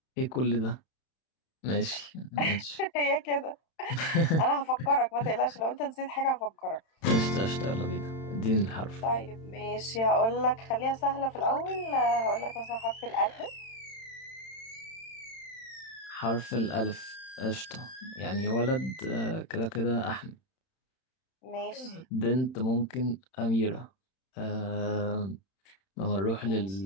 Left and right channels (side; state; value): right; late; 31 ms